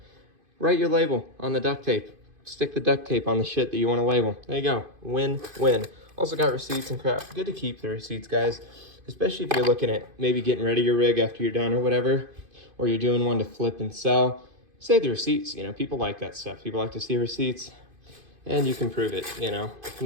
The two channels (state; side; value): late; left; 2.5 ms